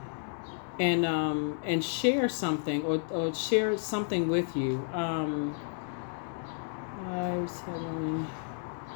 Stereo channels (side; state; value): right; silent; digital silence